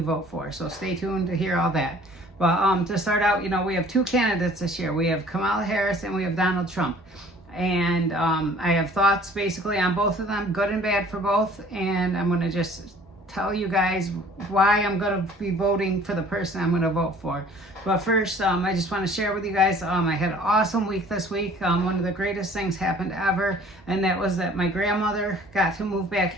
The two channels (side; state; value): both; normal; correlation 0.52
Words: vote for. So stay tuned to hear all that. But to start out, we have two candidates this year. We have Kamala Harris and we have Donald Trump. And I have thoughts basically on both of them, good and bad for both. And I'm going to just tell you guys why I'm going to be voting for the person I'm going to vote for. But first, I just want to share with you guys, I had an awesome week this week. One of the greatest things happened ever, and that was that my grandmother got to move back